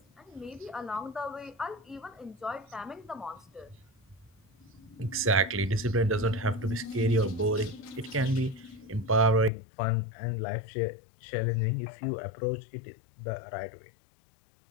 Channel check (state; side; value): drops out; right; at 9.5 s